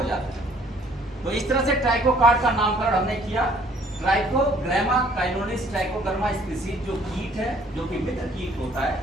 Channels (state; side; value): normal; both; correlation 0.59